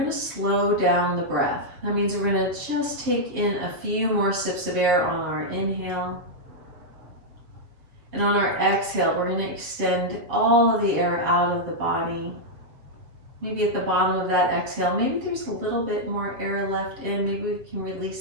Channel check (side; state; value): left; late; 7.2 ms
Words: to slow down the breath. That means we're going to just take in a few more sips of air on our inhale. And on our exhale, we're going to extend all of the air out of the body. Maybe at the bottom of that exhale, maybe there's a little bit more air left in. Maybe we can